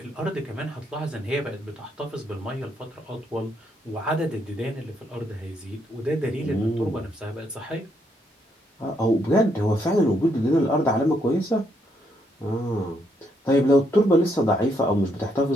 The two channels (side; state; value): both; normal; correlation 0.75